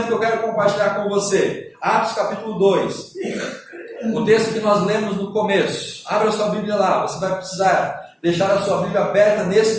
que eu quero compartilhar com você, Atos capítulo 2, o texto que nós lemos no começo. Abra a sua Bíblia lá, você vai precisar deixar a sua Bíblia aberta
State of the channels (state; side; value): identical; both; correlation 1.00